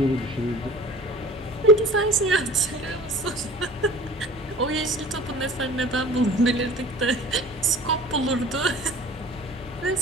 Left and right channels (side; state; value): both; normal; correlation 0.44